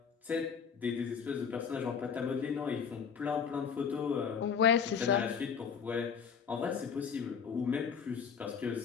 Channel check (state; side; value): quieter; right; 6.7 dB